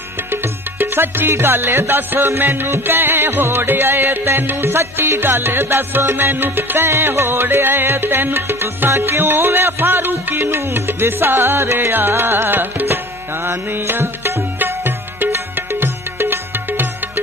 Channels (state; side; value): normal; both; correlation 0.42